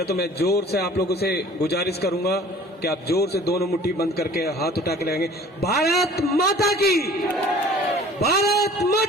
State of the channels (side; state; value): both; normal; correlation 0.48